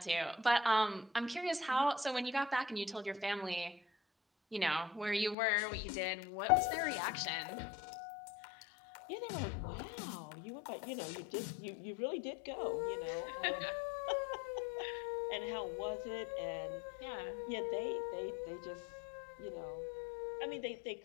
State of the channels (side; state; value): right; drops out; at 5.4 s